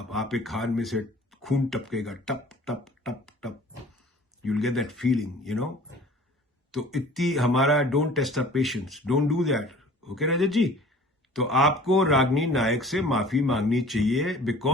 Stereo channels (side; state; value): both; normal; correlation 0.47